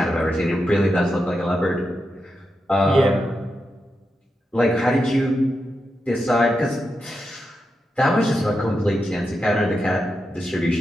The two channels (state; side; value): normal; both; correlation 0.87